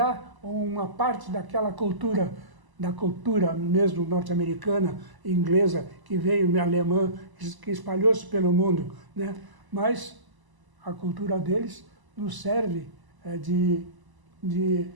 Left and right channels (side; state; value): left; late; 1.0 ms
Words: uma parte daquela cultura da cultura mesmo norte-americana, inglesa, que veio, alemã, que espalhou-se pelo mundo, né? Mas a cultura deles nos serve de